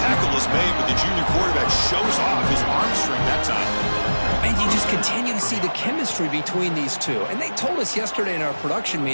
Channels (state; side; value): inverted; both; correlation -1.00